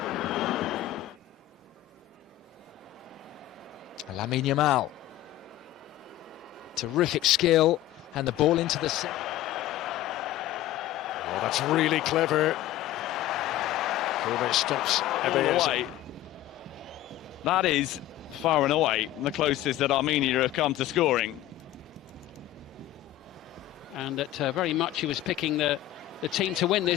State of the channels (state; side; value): quieter; right; 14.1 dB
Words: Lamine Yamal, terrific skill, and the ball into the set. Oh, that's really clever. Kovac stops away. That is far and away the closest that Armenia have come to scoring. And that very much he was picking the team to win